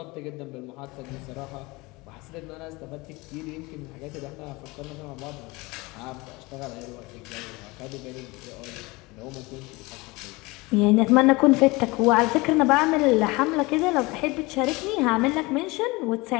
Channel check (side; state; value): right; quieter; 23.6 dB